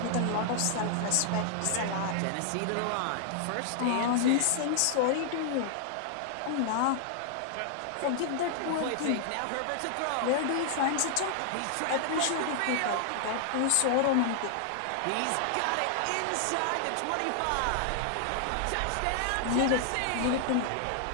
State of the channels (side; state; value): both; different; correlation -0.01